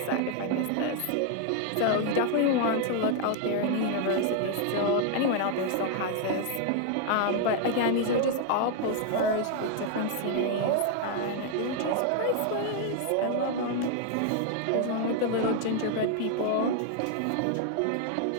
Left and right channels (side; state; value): both; different; correlation 0.00